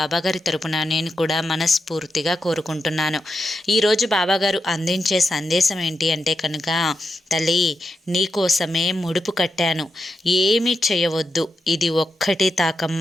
తరపున నేను కూడా మనస్ఫూర్తిగా కోరుకుంటున్నాను. ఈరోజు బాబాగారు అందించే సందేశం ఏంటి అంటే కనుక, తల్లి నీకోసమే ముడుపు కట్టాను, ఏమీ చేయవద్దు, ఇది ఒక్కటి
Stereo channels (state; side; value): normal; both; correlation 0.86